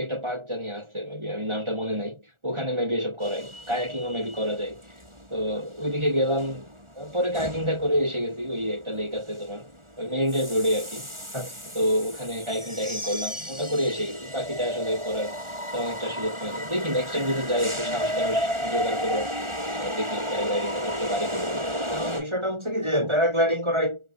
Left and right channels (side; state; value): left; late; 1.4 ms